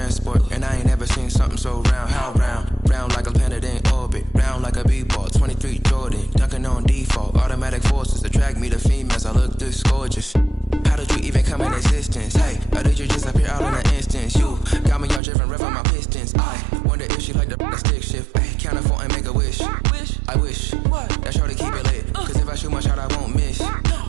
and I ain't never seen something so round. How round? Round like a planet in orbit, round like a b-ball. 23 Jordan, dunking on default. Automatic forces attract me to females. I look this gorgeous. How did you even come in existence? Hey, or did you just appear out in an instance? You got me all driven, revving my pistons. I wonder if she like the stick shift. Ay, count a four and make a wish. I wish that shorty keep it lit. Cause if I shoot my shot, I won't miss.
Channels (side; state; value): left; drops out; at 15.2 s